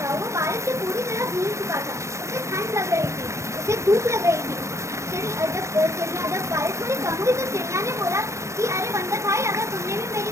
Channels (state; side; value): late; left; 0.14 ms